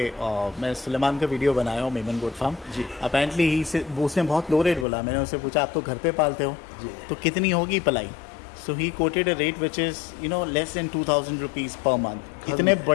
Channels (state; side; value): drops out; right; at 4.9 s